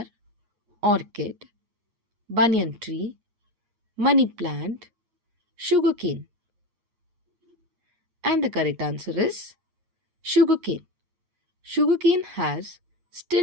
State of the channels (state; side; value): late; left; 8.4 ms